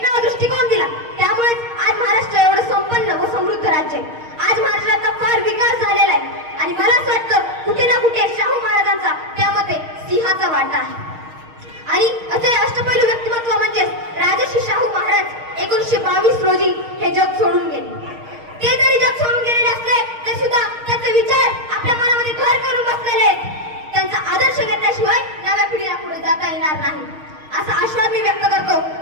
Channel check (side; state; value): left; late; 6.4 ms